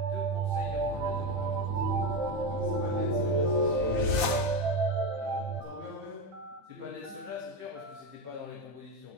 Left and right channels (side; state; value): left; late; 15 ms